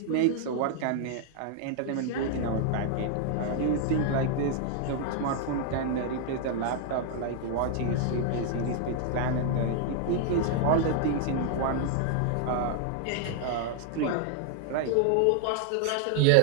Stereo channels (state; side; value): different; both; correlation 0.00